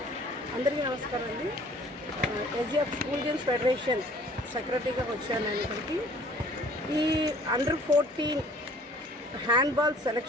అందరికీ నమస్కారం అండి. ఎస్జిఎఫ్ స్కూల్ గేమ్స్ ఫెడరేషన్ సెక్రటరీగా వచ్చాను నేను ఇక్కడికి. ఈ అండర్-14 హ్యాండ్బాల్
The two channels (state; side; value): normal; both; correlation 0.53